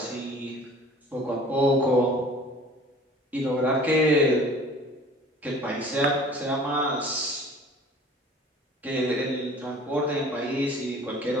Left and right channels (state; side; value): normal; both; correlation 0.47